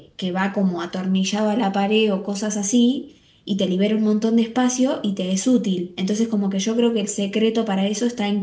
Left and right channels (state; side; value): identical; both; correlation 1.00